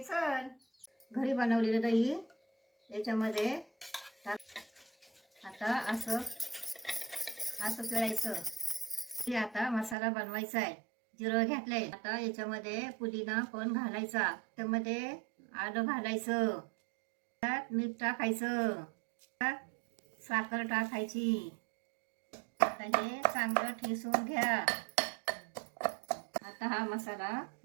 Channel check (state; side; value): drops out; left; at 10.0 s